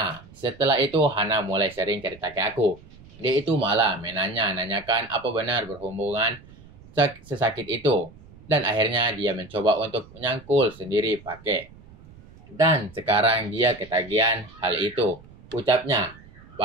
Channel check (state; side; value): noise; right; rumble, 22 dB below the sound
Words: setelah itu Hana mulai sering cerita ke aku. Dia itu malah nanyakan apa benar berhubungan sesakit itu. Dan akhirnya dia mencoba untuk menyangkul sendiri pakai. Dan sekarang dia ketagihan hal itu. Ucapnya.